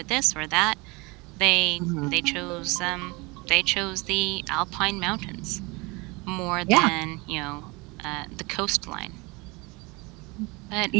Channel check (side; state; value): left; quieter; 26.1 dB